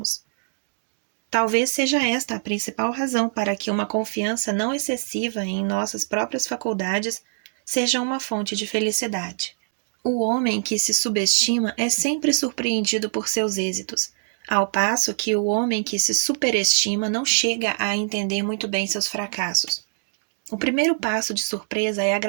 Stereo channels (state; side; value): silent; left; digital silence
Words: Talvez seja esta a principal razão para que uma confiança não excessiva em nossas próprias faculdades seja uma fonte de felicidade. O homem que se subestima é sempre surpreendido por seus êxitos, ao passo que o homem que se superestima não chega a entender muito bem seus fracassos. O primeiro passo de surpresa é